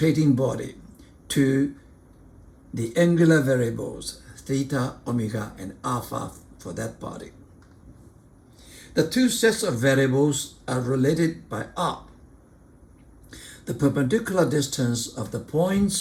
body to the angular variables theta, omega, and alpha for that body. The two sets of variables are related by r, the perpendicular distance of the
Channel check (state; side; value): identical; both; correlation 1.00